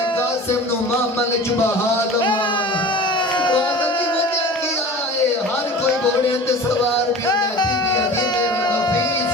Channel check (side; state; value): both; normal; correlation 0.38